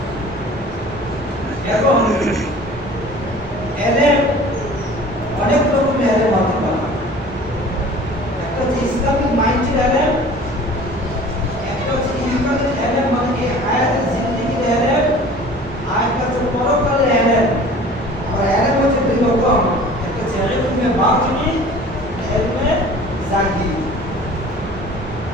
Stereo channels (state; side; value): normal; both; correlation 0.45